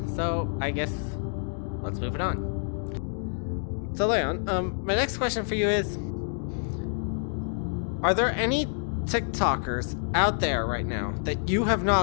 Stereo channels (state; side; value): silent; right; 60 dB below the other